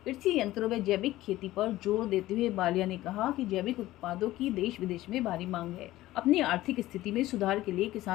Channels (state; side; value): quieter; right; 16.1 dB